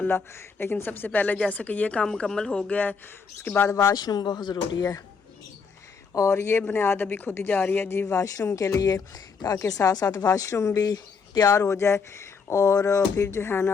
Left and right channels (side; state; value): right; quieter; 5.4 dB